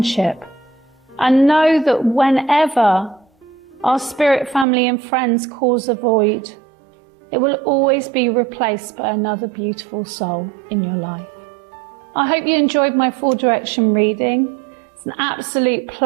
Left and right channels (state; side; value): drops out; left; at 4.7 s